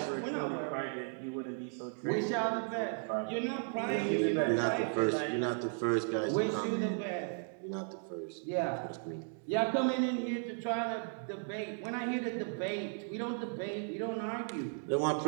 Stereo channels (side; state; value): left; silent; 54 dB below the other